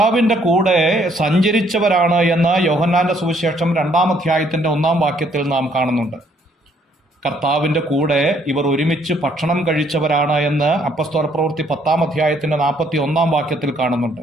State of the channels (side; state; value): both; normal; correlation 0.66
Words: കൂടെ സഞ്ചരിച്ചവരാണ് എന്ന് യോഹന്നാന്റെ സുവിശേഷം 2-ാം അധ്യായത്തിന്റെ 1-ാം വാക്യത്തിൽ നാം കാണുന്നുണ്ട്. കർത്താവിന്റെ കൂടെ ഇവർ ഒരുമിച്ച് ഭക്ഷണം കഴിച്ചവരാണ് എന്ന് അപ്പസ്തോല പ്രവൃത്തി 10-ാം അധ്യായത്തിന്റെ 41-ാം വാക്യത്തിൽ